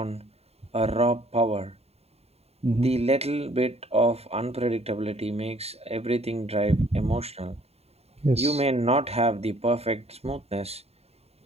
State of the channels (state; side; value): late; left; 0.30 ms